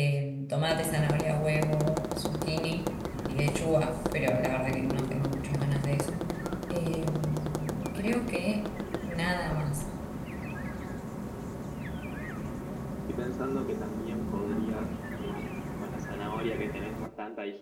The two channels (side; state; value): both; identical; correlation 1.00